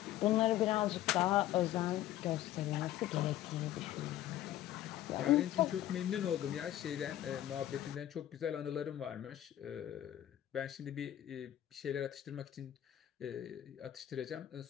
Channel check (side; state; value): right; quieter; 12.9 dB